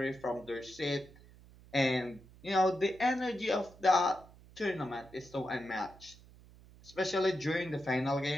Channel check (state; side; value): noise; right; hum, 22 dB below the sound